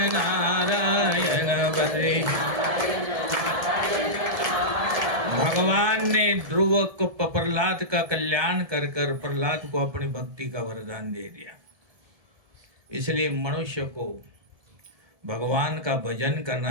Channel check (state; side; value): late; left; 1.7 ms